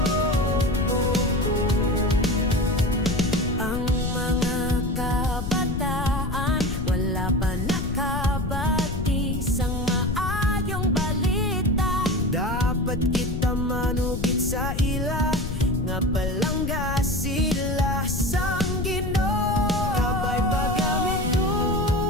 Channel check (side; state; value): left; noise; rumble, 4 dB below the sound